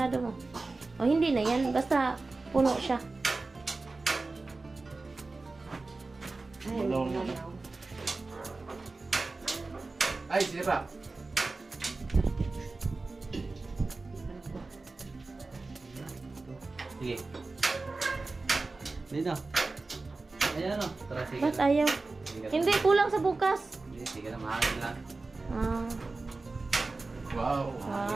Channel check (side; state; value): left; quieter; 3.5 dB